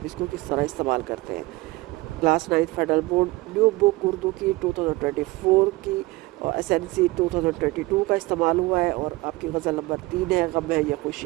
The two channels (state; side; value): quieter; left; 21.3 dB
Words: اس کو کس طرح استعمال کرتے ہیں۔ کلاس 9 فیڈرل بورڈ نیو بک اردو کی 2024 کی اور SNC 2022 کا استعمال ہوا ہے، اور آپ کی غزل نمبر 3 ہے، غم ہے یا